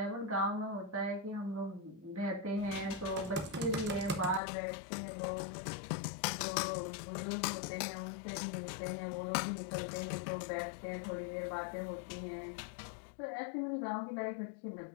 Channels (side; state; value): right; drops out; at 4.4 s